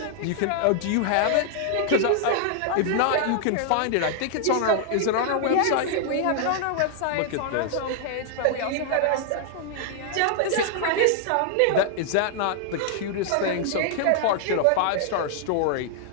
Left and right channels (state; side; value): different; both; correlation -0.01